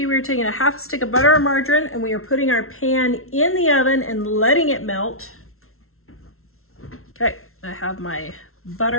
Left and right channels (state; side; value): late; right; 0.62 ms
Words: we're taking a half stick of butter or margarine and we are putting our pan in the oven and letting it melt. Okay, I have my